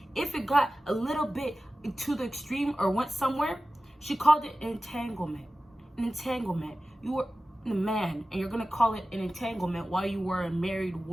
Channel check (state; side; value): normal; both; correlation 0.95